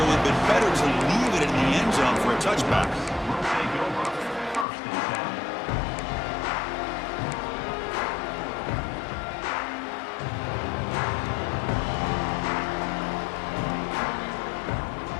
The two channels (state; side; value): drops out; right; at 4.7 s